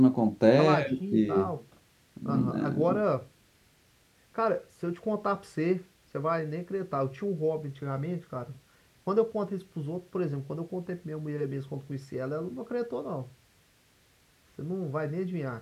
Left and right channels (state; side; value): identical; both; correlation 1.00